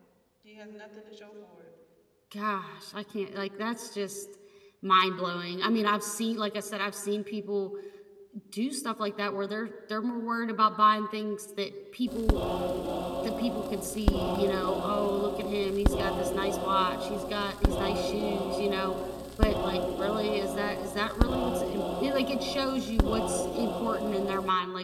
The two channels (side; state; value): both; identical; correlation 1.00